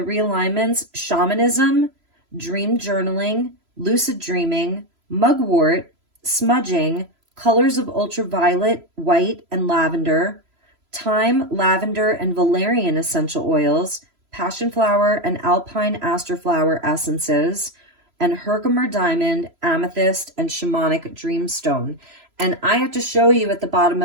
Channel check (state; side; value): late; left; 3.0 ms